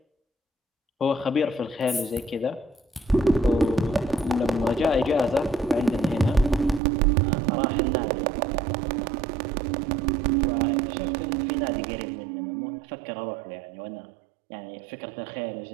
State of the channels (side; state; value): left; drops out; at 6.8 s